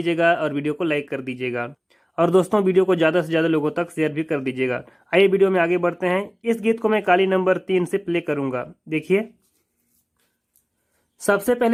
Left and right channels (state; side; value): identical; both; correlation 1.00